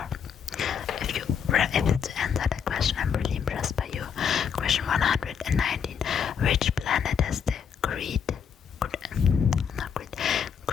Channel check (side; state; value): right; quieter; 7.3 dB